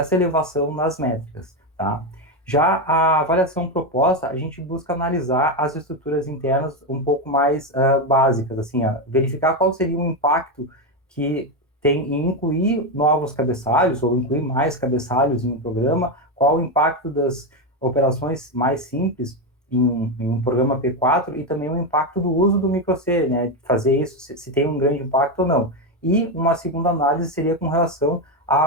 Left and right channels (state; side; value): normal; both; correlation 0.10